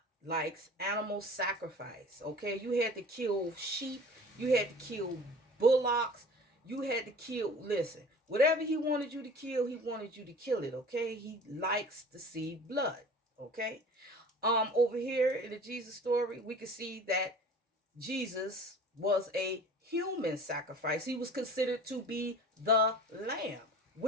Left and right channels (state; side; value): normal; both; correlation 0.43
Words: likes animal sacrifice. Okay, you had to kill sheep, you had to kill bullocks, you had to kill, listen, whatever he wanted you to kill, he wanted you to kill it. Okay, he likes to see blood. Okay. Over here in the Jesus story, we can see that Jesus was a human sacrifice. He was considered to be the lamb,